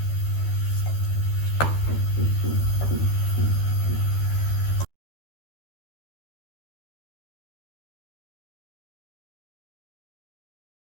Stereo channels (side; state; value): right; late; 12 ms